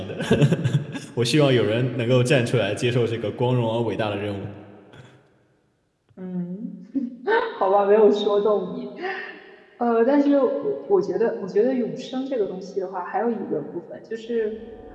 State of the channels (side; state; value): both; identical; correlation 1.00